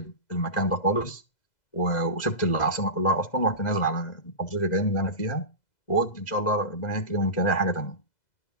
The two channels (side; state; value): right; late; 2.0 ms